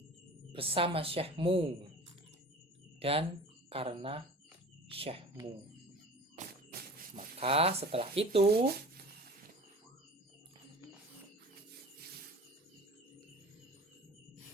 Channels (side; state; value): both; normal; correlation 0.40